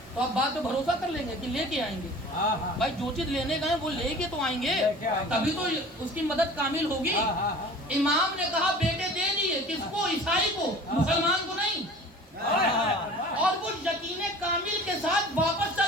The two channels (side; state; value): both; normal; correlation 0.42